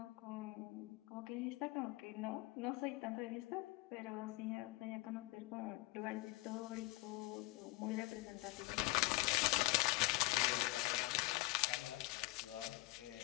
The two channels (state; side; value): quieter; right; 22.2 dB